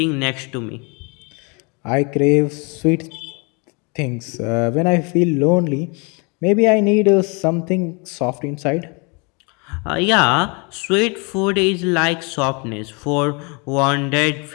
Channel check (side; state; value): right; quieter; 31.5 dB